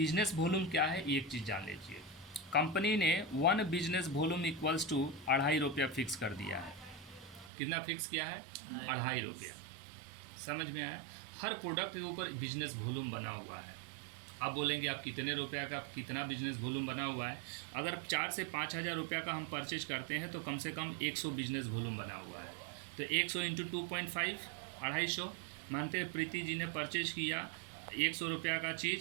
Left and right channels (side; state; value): left; drops out; at 7.5 s